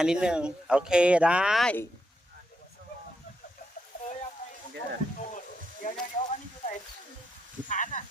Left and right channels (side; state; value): both; normal; correlation 0.81